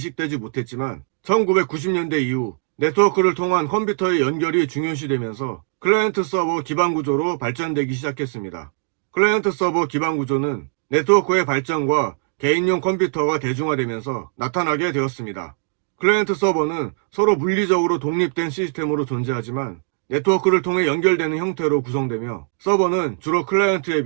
못했지만 1990년대 이후 네트워크를 통한 컴퓨터의 연결이 중요시되면서 클라이언트 서버 기반 구조로 발전되기 시작했습니다. 클라이언트 서버 기반 구조는 네트워크의 발전과 개인용 컴퓨터가 대중화되면서 나타나게 되었습니다. 클라이언트 서버는 서로 물리적으로 독립된 시스템으로 존재하지만 네트워크를 통해 연결되는 형태로 구성되며 서버는 주로 클라이언트에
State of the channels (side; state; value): left; silent; digital silence